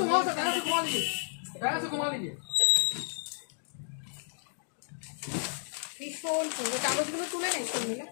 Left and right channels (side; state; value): right; silent; digital silence